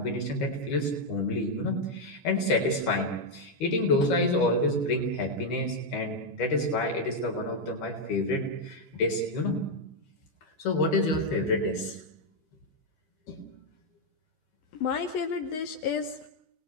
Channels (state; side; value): late; right; 13 ms